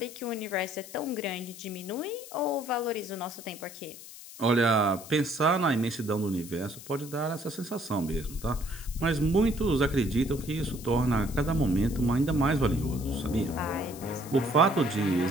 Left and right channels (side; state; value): left; noise; hiss, 15 dB below the sound